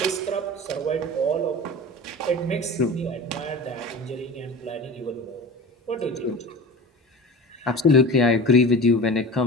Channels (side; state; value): both; normal; correlation 0.34